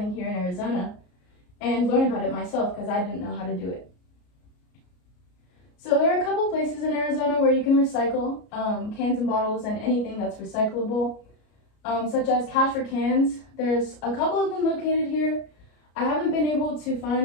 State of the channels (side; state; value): right; late; 33 ms